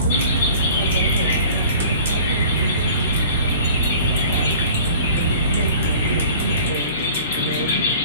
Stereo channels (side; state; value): both; inverted; correlation -0.46